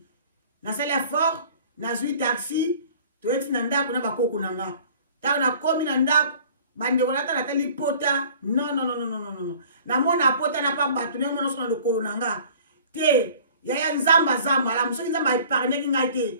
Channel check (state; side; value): inverted; both; correlation -0.49